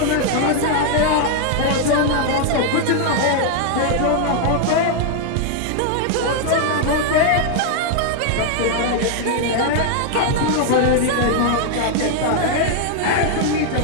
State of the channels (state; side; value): different; both; correlation 0.00